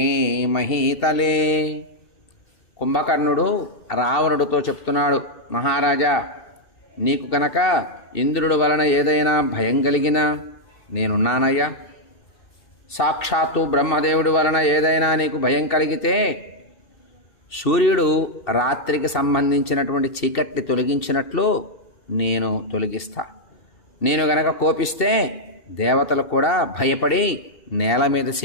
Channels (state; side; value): late; right; 2.7 ms